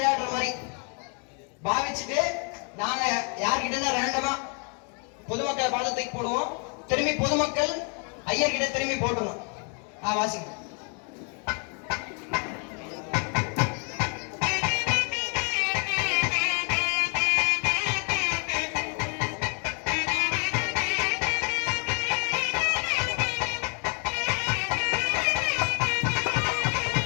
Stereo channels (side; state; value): right; quieter; 39.0 dB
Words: மாதிரி பாவிச்சுட்டு நாங்க யார்கிட்ட ரேண்டமா பொதுமக்களை பார்த்து தூக்கி போடுவோம். திரும்பி பொதுமக்கள் ஐயர்கிட்ட திரும்பி போட்டுருவோம். வாசிங்க.